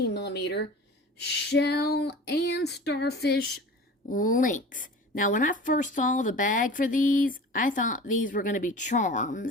millimeter shell and starfish links. Now, when I first saw the bag for these, I thought these were going to be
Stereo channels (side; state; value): both; normal; correlation 0.39